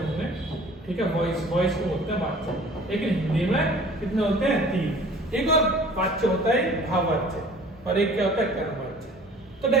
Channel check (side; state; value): both; normal; correlation 0.48